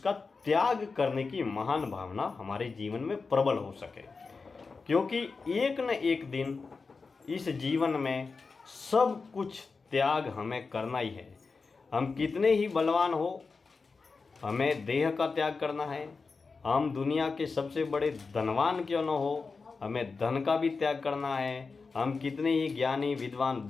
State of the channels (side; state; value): right; quieter; 4.5 dB